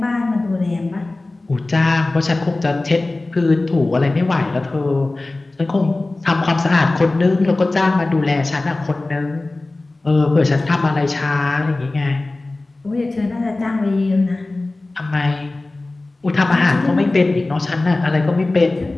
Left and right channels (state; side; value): quieter; right; 3.0 dB